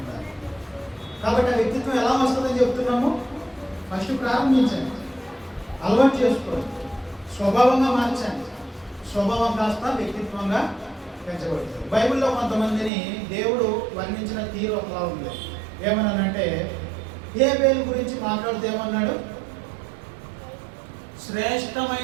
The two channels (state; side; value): drops out; left; at 12.9 s